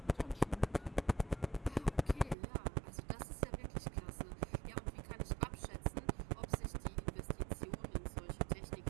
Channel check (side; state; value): left; drops out; at 2.4 s